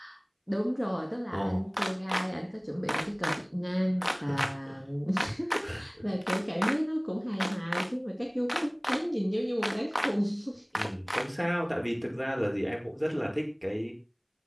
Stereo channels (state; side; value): identical; both; correlation 1.00